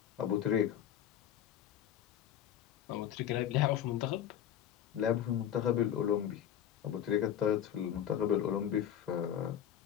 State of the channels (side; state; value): right; quieter; 10.2 dB